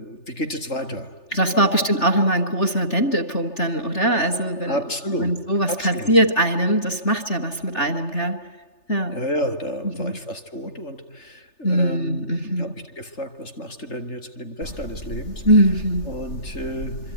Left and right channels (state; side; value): late; right; 3.4 ms